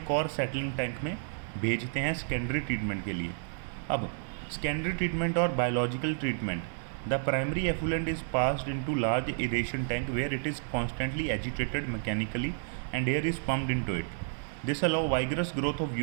और सेटलिंग टैंक में भेजते हैं सेकेंडरी ट्रीटमेंट के लिए। अब सेकेंडरी ट्रीटमेंट और biological treatment. The primary effluent is passed into large aeration tank where it is constantly agitated mechanically and air is pumped into it. This allows vigorous growth of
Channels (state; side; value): silent; left; 57 dB below the other